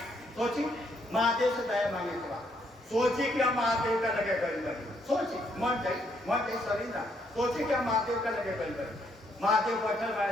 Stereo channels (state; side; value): normal; both; correlation 0.72